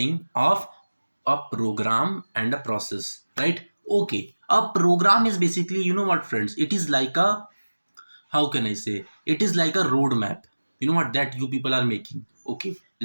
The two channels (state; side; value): inverted; both; correlation -1.00